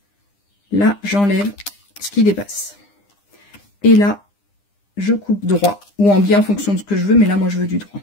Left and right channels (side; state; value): right; late; 9.9 ms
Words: Là, j'enlève ce qui dépasse. Et là, je coupe droit ou en biais en fonction de ce que je veux. Mais là, moi, je veux du droit.